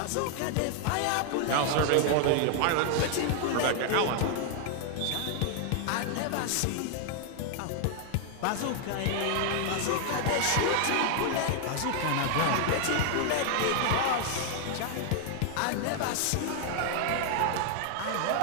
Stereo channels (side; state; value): both; different; correlation 0.00